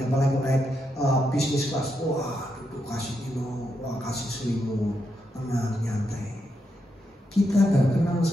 apalagi naik bisnis kelas, wah duduk kasih minum, wah kasih selimut, tenang, nyantai. Kita nggak kenal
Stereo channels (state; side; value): normal; both; correlation 0.82